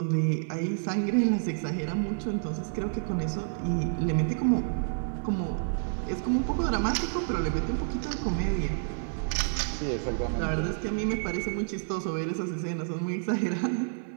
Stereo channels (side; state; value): left; silent; digital silence